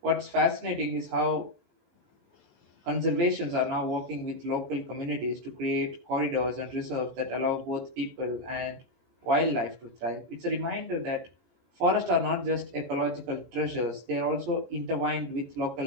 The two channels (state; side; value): late; left; 17 ms